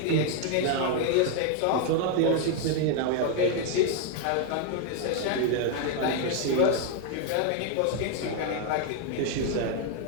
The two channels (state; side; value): different; both; correlation 0.01